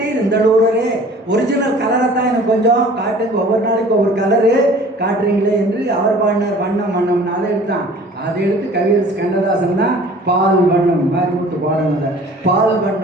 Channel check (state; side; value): normal; both; correlation 0.48